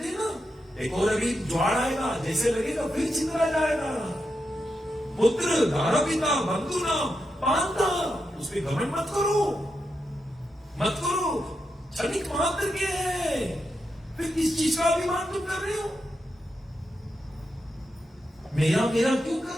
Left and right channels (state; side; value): normal; both; correlation 0.86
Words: हैं ना, एक और अभी ज्वार आएगा, जैसे लगेगा फिर चिंता जाएगा। पुत्र दारा पिता बंधु नाम पांता, उस पर घमंड मत करो। मत करो, क्षणिक मात्र के है, फिर किस चीज का अभिमान तुम कर रहे हो? मेरा मेरा क्यों कर